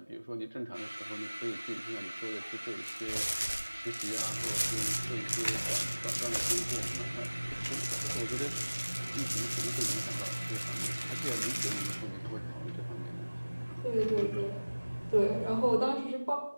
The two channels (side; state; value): both; inverted; correlation -1.00